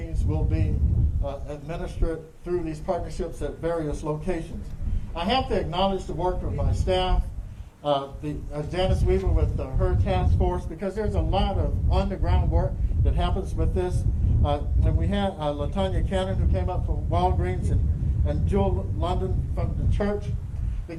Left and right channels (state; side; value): identical; both; correlation 1.00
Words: will be administered through these partnerships at various locations. I have to acknowledge the work of my staff, Janice Weaver with her task force, because there's a lot of on-the-ground work that happens with this. And we had LaTanya Cannon, who came up from Walgreens, and Jewel London from the church,